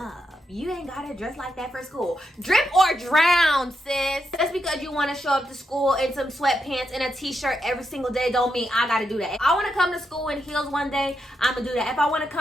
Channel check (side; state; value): both; normal; correlation 0.83